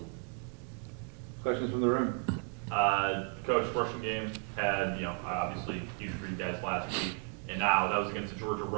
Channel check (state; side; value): quieter; left; 33.9 dB